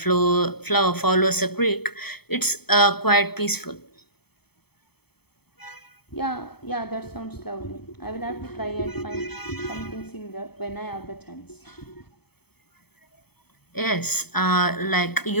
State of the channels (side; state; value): right; late; 0.97 ms